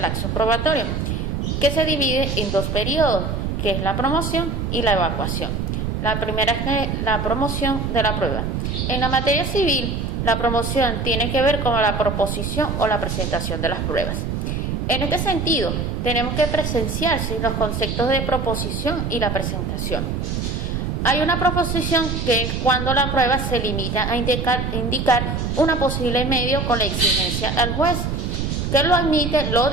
probatorio, que se divide en dos periodos, que es la promoción y la evacuación. La primera es la promoción de la prueba. En la materia civil, la promoción tiene que ver con la proposición o la presentación de las pruebas. En este sentido, tenemos que presenciarse los conceptos de proposición y la presentación. Hay una proposición que es cuando la prueba se limita a indicar una posible medio con la exigencia al juez, que lo admite, lo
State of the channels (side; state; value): right; noise; rumble, 2 dB below the sound